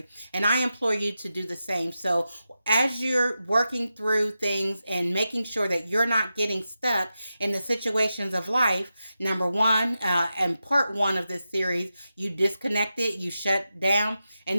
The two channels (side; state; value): both; inverted; correlation -0.90